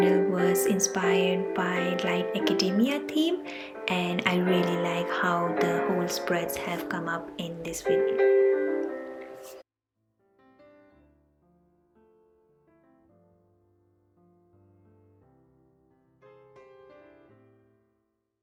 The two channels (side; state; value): both; identical; correlation 1.00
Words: was inspired by light academia theme, and I really like how the whole spreads have come up in this video.